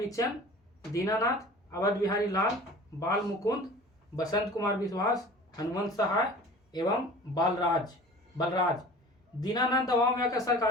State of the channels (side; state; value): both; normal; correlation 0.42